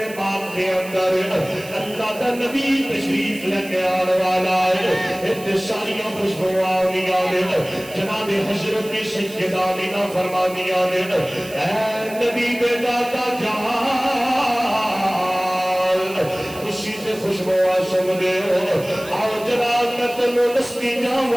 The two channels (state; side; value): noise; right; hiss, 17 dB below the sound